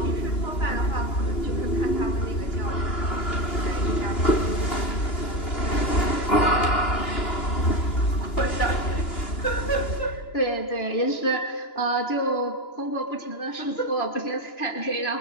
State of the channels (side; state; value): right; late; 2.9 ms